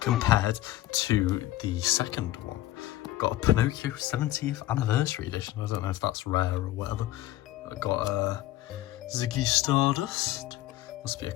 to the second one. Got a Pinocchio 70th anniversary edition. I don't know if that's rare or whatever. I got a Ziggy Stardust. Must be a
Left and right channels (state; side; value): quieter; right; 15.0 dB